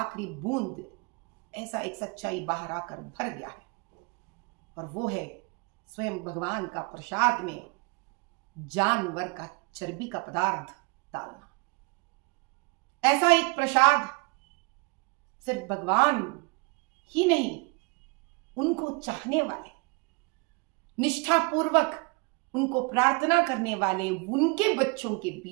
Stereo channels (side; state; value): left; quieter; 30.0 dB